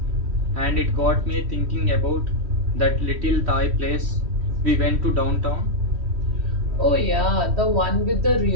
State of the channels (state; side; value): late; left; 3.1 ms